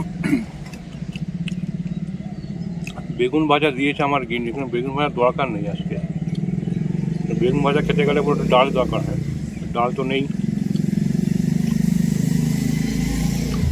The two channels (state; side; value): identical; both; correlation 1.00